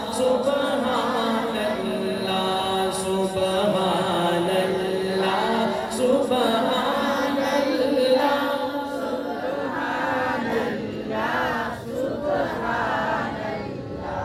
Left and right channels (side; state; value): both; identical; correlation 1.00